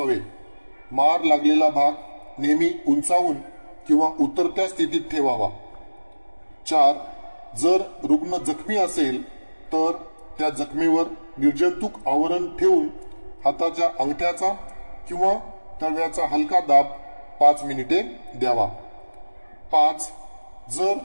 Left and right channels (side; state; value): both; inverted; correlation -1.00